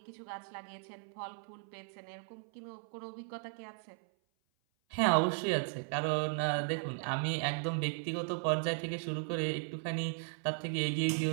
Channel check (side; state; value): left; silent; 54 dB below the other